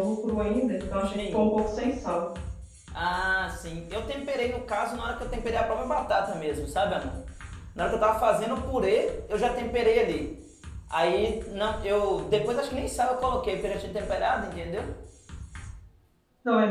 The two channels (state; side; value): identical; both; correlation 1.00